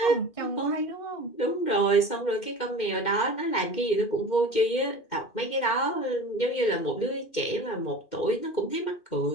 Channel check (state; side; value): late; right; 2.1 ms